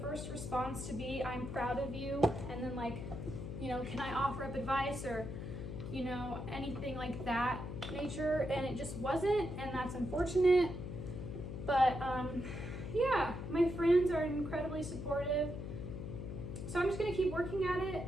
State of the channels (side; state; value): left; noise; hum, 7 dB below the sound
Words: response to be, I'm proud of you, and then like, you know, can I offer up advice, or you know, anything like that nature, and it just wasn't, and that's unfortunate. But yeah, my friends are incredibly supportive, so I'm just gonna keep working at it.